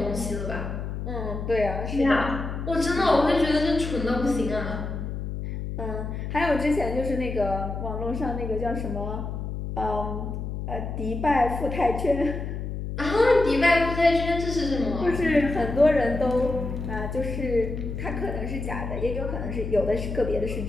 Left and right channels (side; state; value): left; noise; hum, 5 dB below the sound